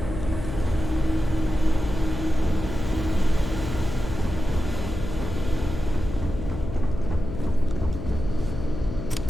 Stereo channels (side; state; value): left; noise; hum, 7 dB below the sound